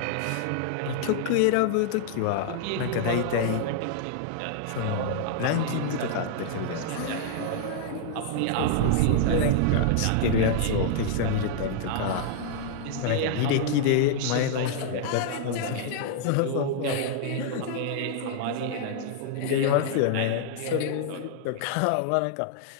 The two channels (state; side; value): different; both; correlation -0.01